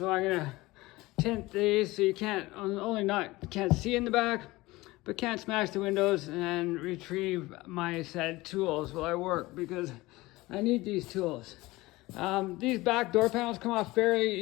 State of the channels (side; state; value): right; quieter; 20.1 dB